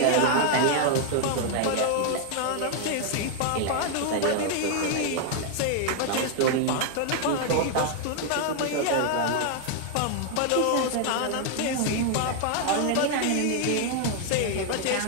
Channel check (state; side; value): different; both; correlation 0.00